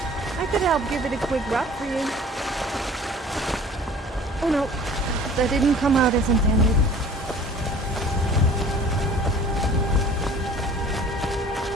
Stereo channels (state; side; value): normal; both; correlation 0.47